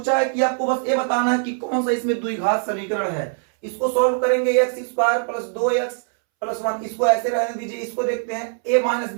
है कि आपको बस ये बताना है कि कौन सा इसमें द्विघात समीकरण है, इसको सॉल्व करेंगे, x² + 2x + 1, इसको ऐसे रहने दीजिए, इसको देखते हैं a -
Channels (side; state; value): left; silent; 64 dB below the other